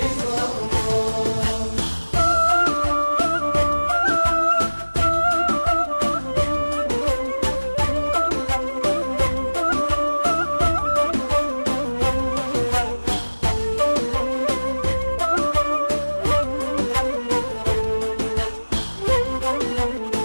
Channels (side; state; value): both; inverted; correlation -1.00